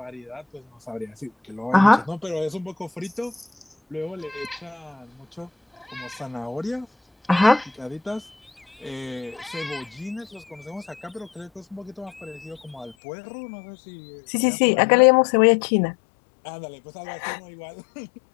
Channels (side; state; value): right; drops out; at 13.0 s